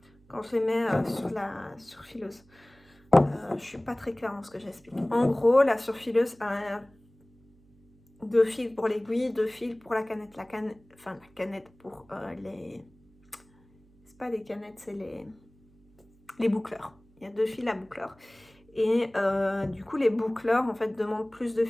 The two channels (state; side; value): noise; right; hum, 30 dB below the sound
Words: quand je les mets sur la surfileuse. Je suis pas très claire dans ce que j'explique. En gros, la surfileuse a 2 fils pour l'aiguille, 2 fils pour la canette. La canette pour les... C'est pas les canettes, c'est les boucleurs. Il y a 2 fils à boucleurs. Et du coup, les boucleurs, en fait, demandent plus de